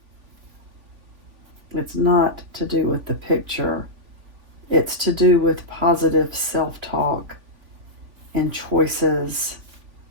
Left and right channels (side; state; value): left; late; 3.5 ms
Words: It's not to do with the picture. It's to do with positive self-talk and choices